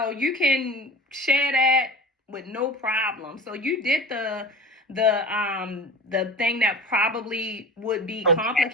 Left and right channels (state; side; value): normal; both; correlation 0.35